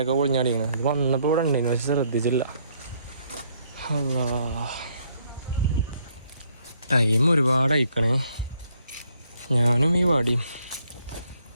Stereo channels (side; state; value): both; inverted; correlation -0.69